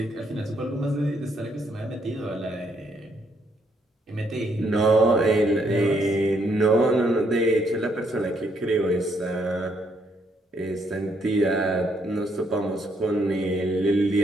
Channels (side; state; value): both; normal; correlation 0.72